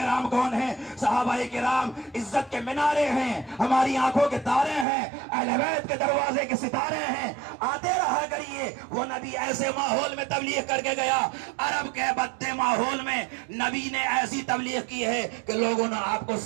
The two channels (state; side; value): drops out; left; at 4.9 s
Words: کون ہیں۔ صحابہ کرام عزت کے منارے ہیں، ہماری آنکھوں کے تارے ہیں، اہل بیت کے دروازے کے ستارے ہیں۔ آتے رہا کریے۔ وہ نبی ایسے ماحول میں تبلیغ کر کے گیا، عرب کے بدے ماحول میں نبی نے ایسی تبلیغ کی ہے کہ لوگوں نے آپ کو